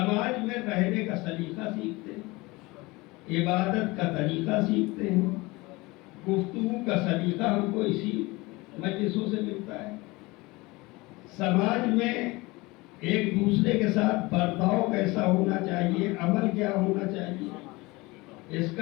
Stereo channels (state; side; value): quieter; right; 22.9 dB